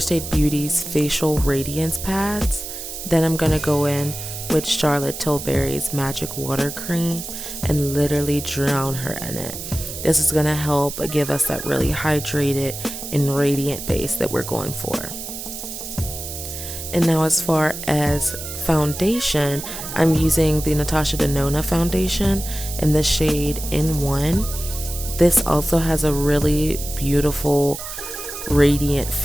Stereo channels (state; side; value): noise; right; hiss, 8 dB below the sound